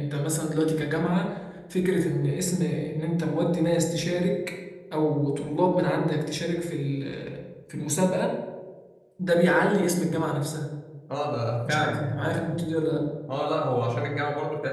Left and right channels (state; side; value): identical; both; correlation 1.00